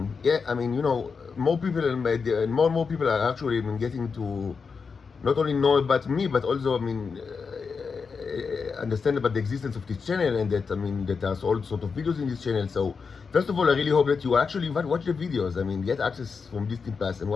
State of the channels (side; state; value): right; quieter; 5.3 dB